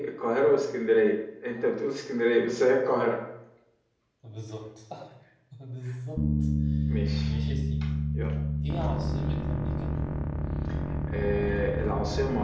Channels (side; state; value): both; identical; correlation 1.00